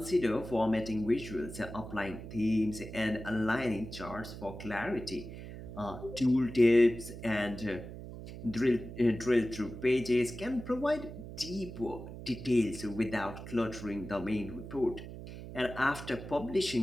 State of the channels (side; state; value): right; noise; hum, 11 dB below the sound